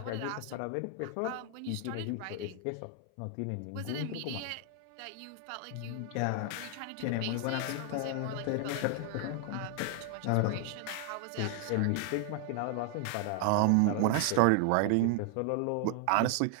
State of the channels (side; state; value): both; different; correlation 0.00